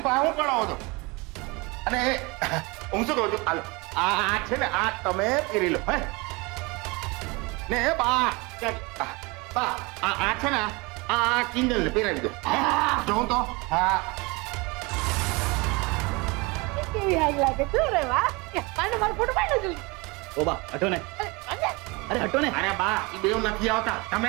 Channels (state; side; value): quieter; left; 26.3 dB